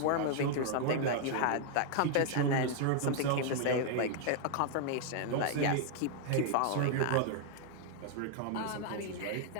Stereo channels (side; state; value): both; different; correlation 0.00